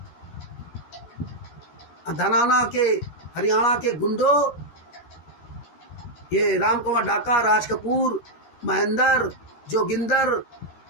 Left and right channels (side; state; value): right; late; 13 ms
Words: धनाना के हरियाणा के गुंडों, ये राम कुमार ढाका, राज कपूर, महेंद्र, जोगिंदर,